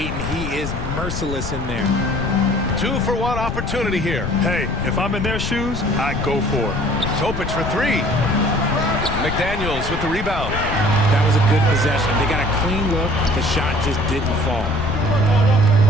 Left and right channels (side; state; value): left; noise; rumble, 5 dB below the sound